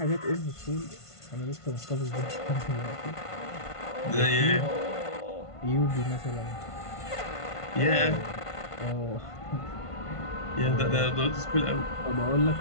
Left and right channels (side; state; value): right; late; 1.5 ms